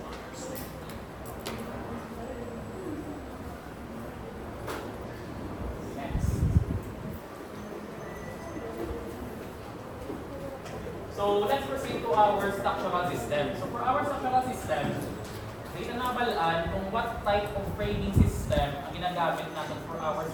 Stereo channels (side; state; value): both; identical; correlation 1.00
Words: So let's proceed to our structural system. So for our structural system, dito na nabalaan kung what type of framing system ang ginagamit natin for our